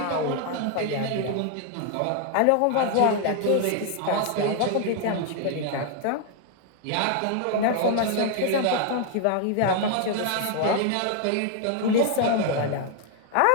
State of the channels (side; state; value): both; different; correlation 0.00